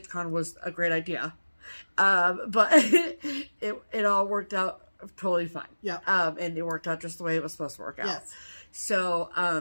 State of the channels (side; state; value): both; inverted; correlation -1.00